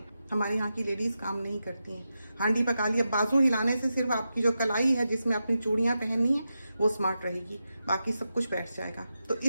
हमारे यहाँ की लेडीज काम नहीं करती हैं। हांडी पका लिया, बाजू हिलाने से सिर्फ आपकी जो कलाई है जिसमें अपनी चूड़ियाँ पहननी है वो स्मार्ट रहेगी, बाकी सब कुछ बैठ जाएगा। तो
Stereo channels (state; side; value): inverted; both; correlation -0.90